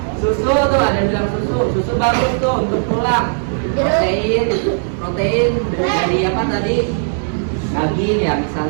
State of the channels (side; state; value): left; silent; 68 dB below the other